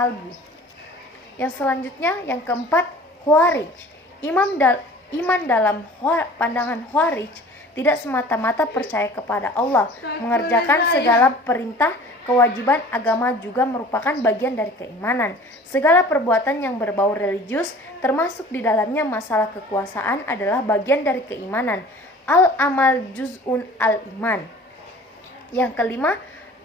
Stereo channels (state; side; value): normal; both; correlation 0.45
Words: Yang selanjutnya, yang keempat, Khawarij. Iman dalam pandangan Khawarij tidak semata-mata percaya kepada Allah. Mengerjakan segala perintah kewajiban agama juga merupakan bagian dari keimanan. Segala perbuatan yang berbau religius, termasuk di dalamnya masalah kekuasaan, adalah bagian dari keimanan. Al-amal juz'un al-iman. Yang kelima,